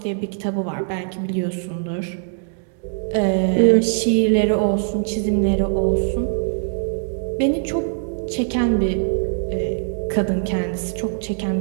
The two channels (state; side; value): silent; left; digital silence